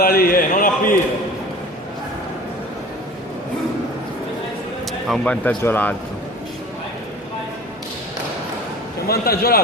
lì, non appiro. Ha un vantaggio l'altro. C'è un vantaggio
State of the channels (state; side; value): normal; both; correlation 0.41